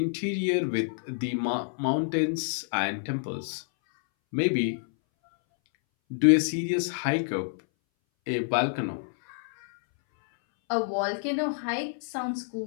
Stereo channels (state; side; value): silent; right; 59 dB below the other